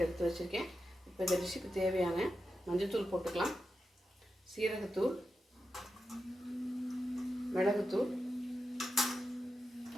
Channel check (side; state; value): both; normal; correlation 0.89